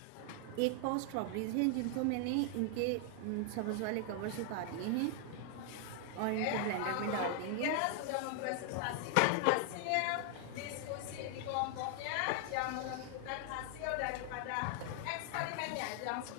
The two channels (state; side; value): different; both; correlation 0.00